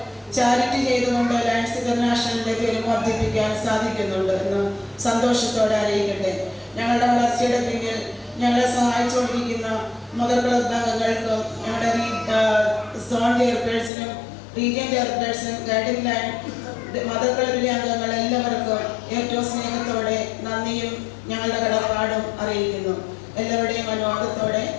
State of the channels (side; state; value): right; drops out; at 13.9 s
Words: ചാരിറ്റി ചെയ്തുകൊണ്ട് ലയൺസ് ഇന്റർനാഷണലിന്റെ പേര് വർദ്ധിപ്പിക്കാൻ സാധിക്കുന്നുണ്ട് എന്ന് സന്തോഷത്തോടെ അറിയിക്കട്ടെ. ഞങ്ങളുടെ വളർച്ചയുടെ പിന്നിൽ ഞങ്ങളെ സഹായിച്ചുകൊണ്ടിരിക്കുന്ന മദർ ക്ലബ് അംഗങ്ങൾക്കും ഞങ്ങളുടെ സോൺ ചെയർപേഴ്സണും റീജിയൻ ചെയർപേഴ്സണും ഗൈഡിംഗ് ലൈൻ മദർ ക്ലബിലെ അംഗങ്ങൾ എല്ലാവർക്കും ഏറ്റവും സ്നേഹത്തോടെ നന്ദിയും ഞങ്ങളുടെ കടപ്പാടും അറിയിക്കുന്നു. എല്ലാവരുടെയും അനുവാദത്തോടെ